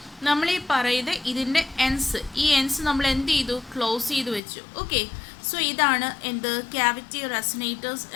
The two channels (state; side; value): drops out; right; at 4.4 s